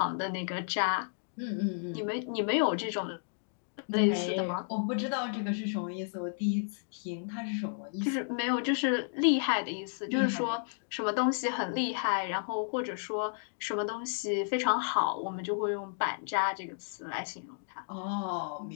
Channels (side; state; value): right; silent; digital silence